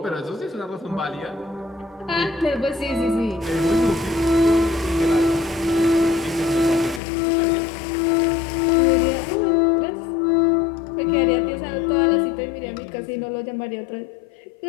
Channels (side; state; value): right; drops out; at 7.0 s